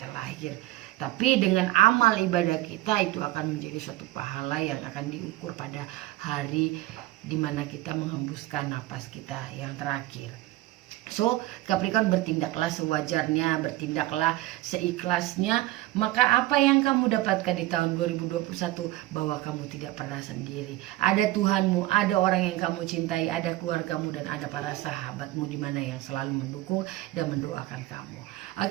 lahir. Tapi dengan amal ibadah kita itu akan menjadi suatu pahala yang akan diukur pada hari dimana kita menghembuskan napas kita yang terakhir. So, Capricorn, bertindaklah sewajarnya, bertindaklah seikhlasnya. Maka apa yang kamu dapatkan di tahun 2021, bahwa kamu tidak pernah sendiri. Ada Tuhanmu, ada orang yang kamu cintai, ada keluargamu, dan ada para sahabatmu di mana yang selalu mendukung dan mendoakan kamu.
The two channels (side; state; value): left; quieter; 17.2 dB